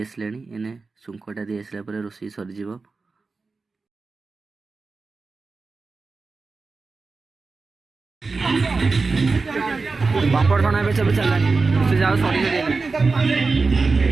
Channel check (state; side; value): quieter; left; 4.1 dB